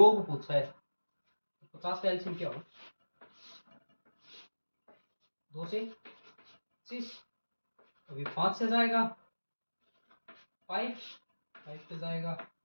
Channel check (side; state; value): both; inverted; correlation -1.00